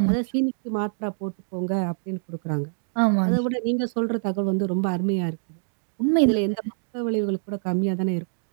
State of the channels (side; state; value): left; silent; digital silence